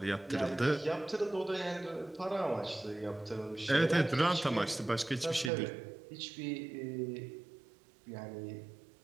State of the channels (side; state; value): left; drops out; at 5.5 s